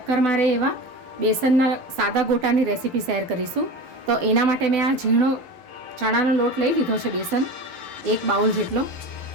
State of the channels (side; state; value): left; late; 11 ms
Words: મારે એવા બેસનના સાદા ગોટાની રેસીપી શેર કરીશું. તો એના માટે મેં આ ઝીણો ચણાનો લોટ લઈ લીધો છે, બેસન 1 બાઉલ જેટલો.